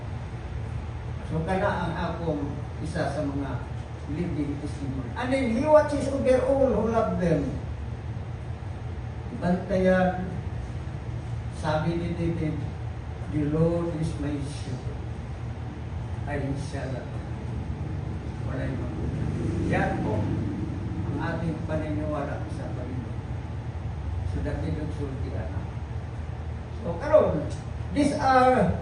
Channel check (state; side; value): identical; both; correlation 1.00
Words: So, kana ang akong isa sa mga living testimony. And then, He watches over all who love them. Bantayan, sabi ni David, the Lord is my shepherd. I shall not walay magulang. Yan po ang ating paniniwala sa Panginoon. So, dati nagsulti na. So, karon, these are